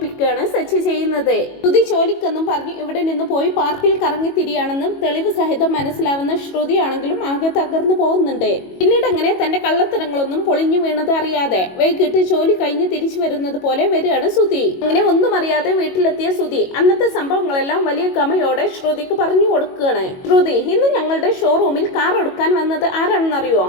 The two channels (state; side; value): late; right; 22 ms